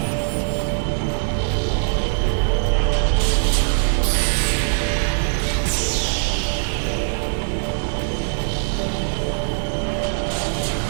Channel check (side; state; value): left; silent; digital silence